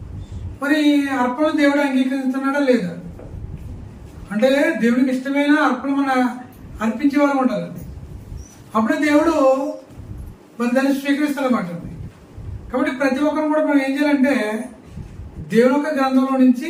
మరి అర్పణలు దేవుడు అంగీకరిస్తున్నాడా లేదా అంటే దేవుడికి ఇష్టమైన అర్పణ మన అర్పించే వాళ్ళు ఉండాలండి. అప్పుడే దేవుడు మరి దాన్ని స్వీకరిస్తాడన్నమాట. కాబట్టి ప్రతి ఒక్కరు కూడా మనం ఏం చేయాలంటే దేవుని యొక్క గ్రంథంలో నుంచి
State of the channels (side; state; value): both; identical; correlation 1.00